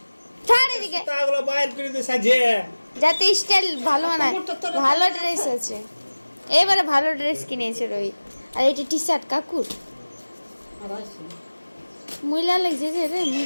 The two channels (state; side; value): inverted; both; correlation -1.00